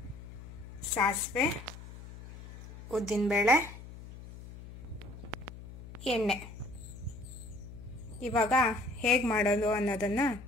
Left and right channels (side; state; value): left; noise; hum, 14 dB below the sound